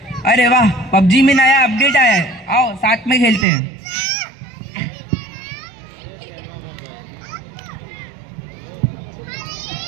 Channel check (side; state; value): left; drops out; at 3.5 s